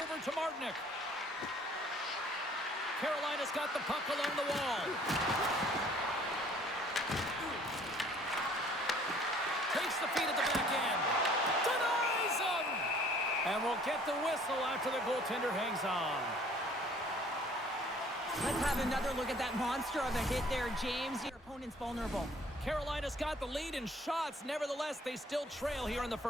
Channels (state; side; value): normal; both; correlation 0.56